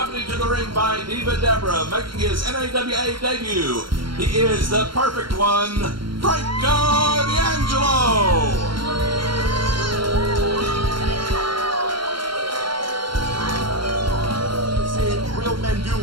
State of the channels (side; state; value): left; late; 0.73 ms